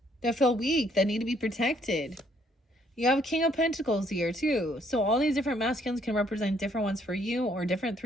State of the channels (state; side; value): normal; both; correlation 0.67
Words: that feel weak, that need to be protected. You have a King of Pentacles here too. So all these different masculines can represent different ones for you or